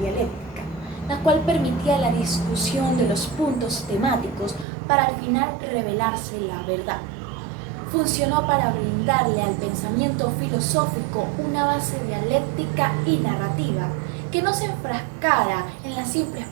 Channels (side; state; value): left; drops out; at 4.7 s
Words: la cual permitía la discusión de los puntos temáticos para al final revelarse la verdad. Funcionó para brindarle al pensamiento filosófico una base dialéctica y narrativa que no se enfrascara en la simple